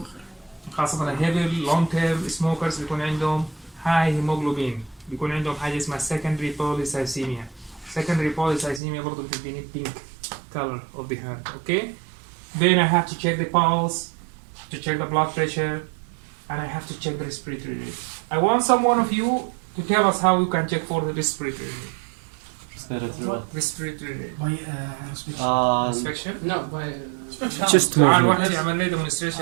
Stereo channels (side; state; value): left; drops out; at 8.8 s